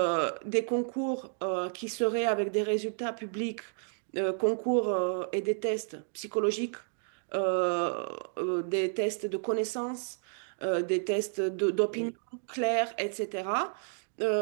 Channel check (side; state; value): left; silent; digital silence